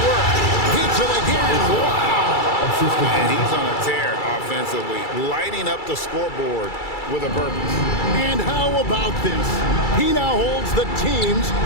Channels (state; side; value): late; right; 2.3 ms